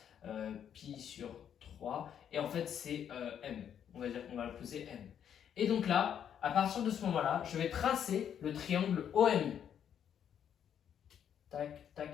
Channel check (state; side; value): quieter; right; 8.9 dB